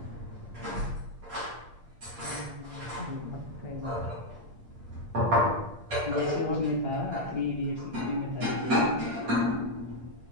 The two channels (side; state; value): left; late; 8.5 ms